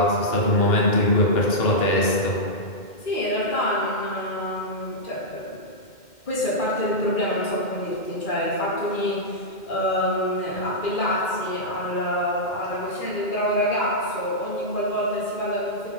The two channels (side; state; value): right; late; 2.1 ms